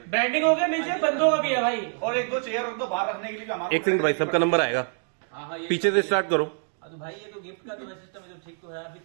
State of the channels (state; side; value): silent; left; 61 dB below the other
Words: ब्रांडिंग हो गया, नीचे बंदों का भी है भाई। और 1-2 चेयर रख दो बाहर रखने के लिए भी हमारा। एक सेकंड भाई, सबका नंबर आएगा, पीछे से स्टार्ट करो। तो भाई ये तो गिफ्ट का जो सिस्टम है जो ठीक तो है, अभी